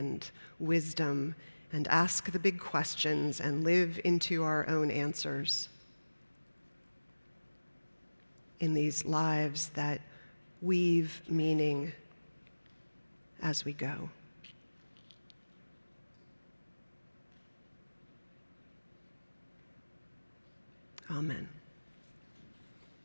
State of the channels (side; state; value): both; inverted; correlation -1.00